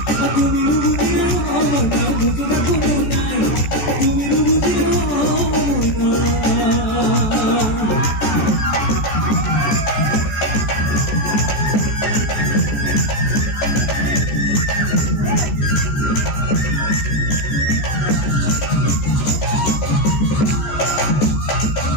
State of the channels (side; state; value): right; late; 14 ms